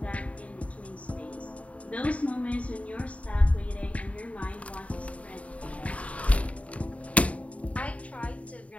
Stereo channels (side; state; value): right; late; 0.066 ms